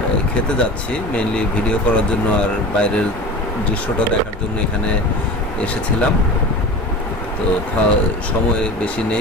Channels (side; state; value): both; normal; correlation 0.33